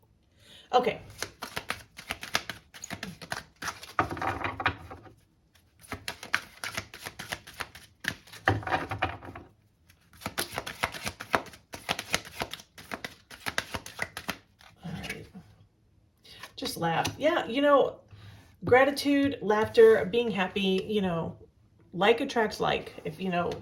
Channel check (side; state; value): both; identical; correlation 1.00